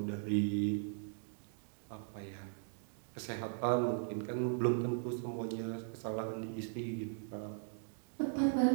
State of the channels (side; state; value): left; silent; digital silence